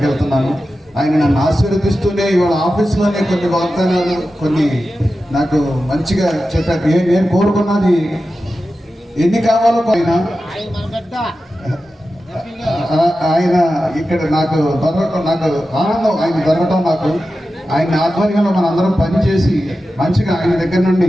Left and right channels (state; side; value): normal; both; correlation 0.93